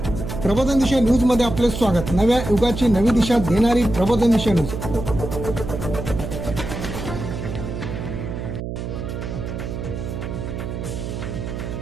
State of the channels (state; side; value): noise; right; hum, 6 dB below the sound